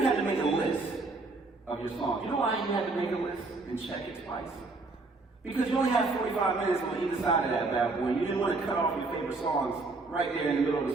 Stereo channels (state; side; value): quieter; left; 3.5 dB